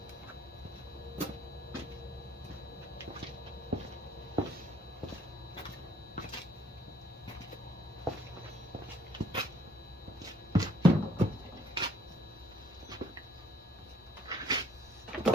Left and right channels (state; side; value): normal; both; correlation 0.64